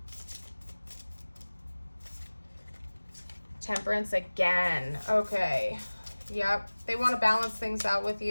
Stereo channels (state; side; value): inverted; both; correlation -1.00